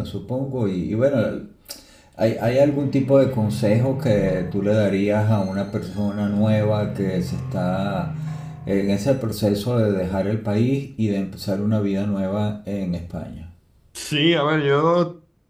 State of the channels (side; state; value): both; identical; correlation 1.00